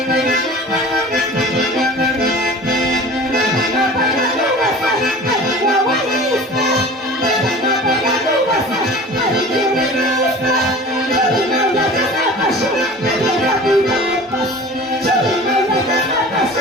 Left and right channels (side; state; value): both; normal; correlation 0.40